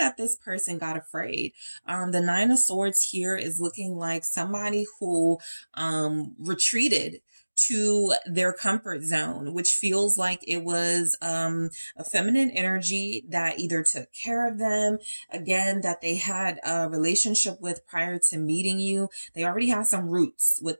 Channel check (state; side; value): inverted; both; correlation -1.00